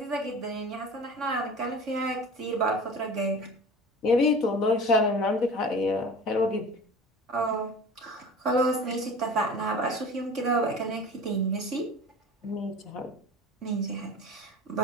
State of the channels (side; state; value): both; normal; correlation 0.38